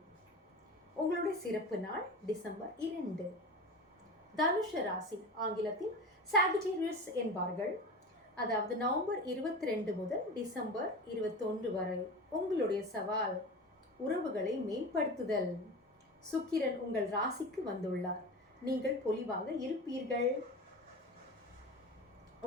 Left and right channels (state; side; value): normal; both; correlation 0.30